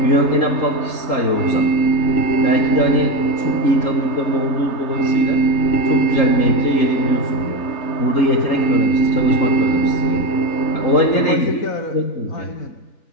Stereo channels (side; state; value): right; late; 3.8 ms